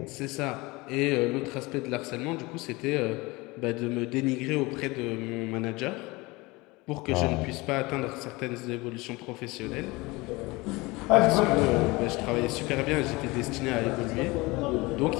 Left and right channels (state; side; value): quieter; right; 23.2 dB